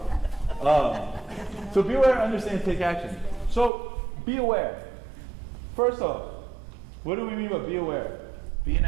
So be aware, understand, and take action. So be aware. First off, what do we mean by be aware? Be in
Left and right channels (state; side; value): drops out; left; at 3.7 s